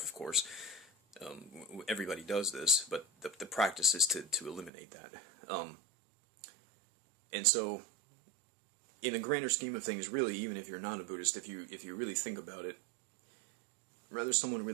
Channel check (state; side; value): drops out; left; at 4.7 s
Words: of course. Everybody does this, but the practice is to eliminate that. And so, in the grander scheme of things, really, even if you're not a Buddhist, if you really think about it, whether someone